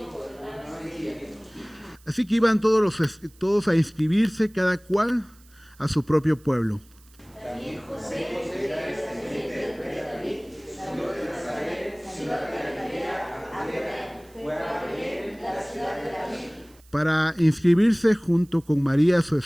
Así que iban todos a inscribirse, cada cual a su propio pueblo. Para inscribirse junto con María, su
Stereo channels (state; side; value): noise; right; hiss, 28 dB below the sound